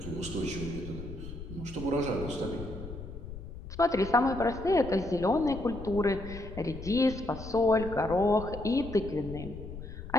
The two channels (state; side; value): noise; left; rumble, 11 dB below the sound